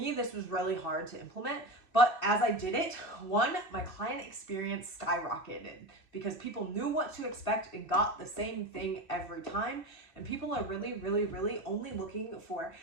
this was really hard to implement. But as I did it, one, my client experience skyrocketed because people knew what to expect and got the same thing every time. And people are really, really, really only looking for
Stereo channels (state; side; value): late; right; 2.6 ms